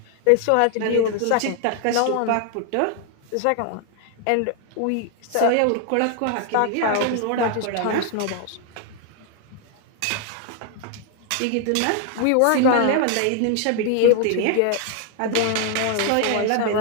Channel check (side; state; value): both; different; correlation 0.00